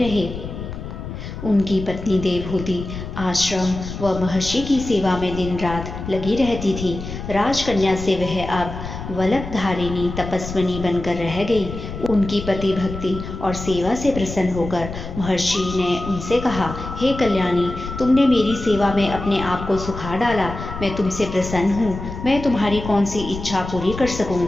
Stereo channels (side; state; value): left; noise; rumble, 9 dB below the sound